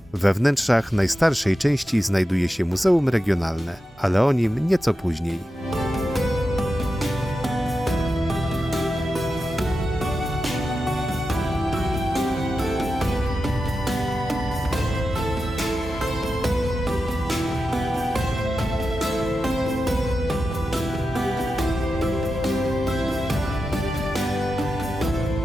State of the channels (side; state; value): both; normal; correlation 0.91